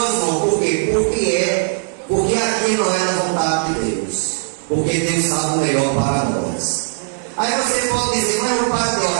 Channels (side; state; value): left; silent; digital silence